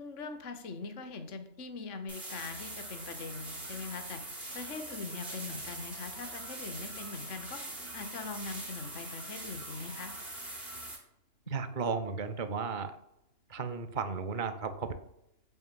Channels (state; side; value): late; right; 2.8 ms